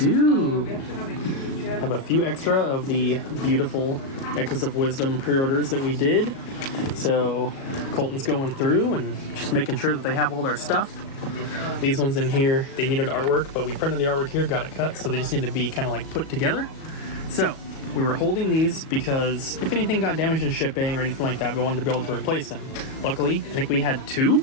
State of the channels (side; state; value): right; late; 37 ms